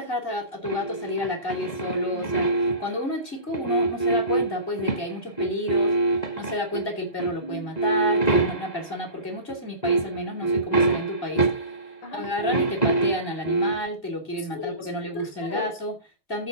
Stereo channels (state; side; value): late; right; 2.0 ms